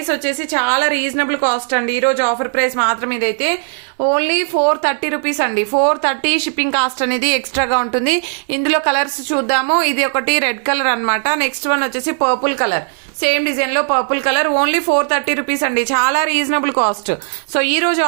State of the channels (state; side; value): silent; left; 60 dB below the other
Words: వచ్చేసి చాలా రీజనబుల్ కాస్ట్ అండి. ఈ రోజు ఆఫర్ ప్రైస్ మాత్రం ఇదైతే ఓన్లీ 430 రూపీస్ అండి. 430 షిప్పింగ్ కాస్ట్ అనేది ఎక్స్ట్రాగా ఉంటుంది. ఇందులో కలర్స్ చూద్దాము. ఇది ఒకటి రెడ్ కలర్ అన్నమాట. నెక్స్ట్ వన్ వచ్చేసి పర్పుల్ కలర్, సేమ్ డిజైన్ లో పర్పుల్ కలర్. ఓన్లీ 430 రూపీస్ అండి, చాలా రీజనబుల్ కాస్ట్. సో ఈ రోజు